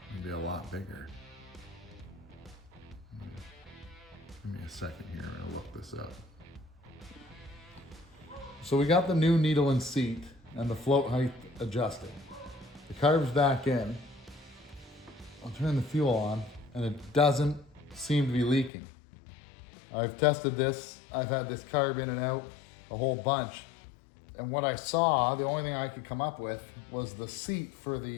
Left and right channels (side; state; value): right; drops out; at 18.7 s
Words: It'd be a lot bigger. Give me a second here, I'm gonna look this up. So we got the new needle and seat and the float height adjusted. The carb's back in. I'll turn the fuel on and it doesn't seem to be leaking. I've tested this. I've had this carb in and out a whole bunch. And what I saw, the only thing I could come up with was the seat for